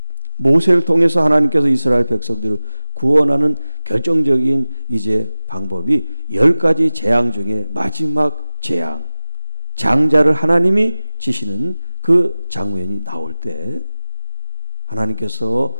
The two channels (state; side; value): inverted; both; correlation -1.00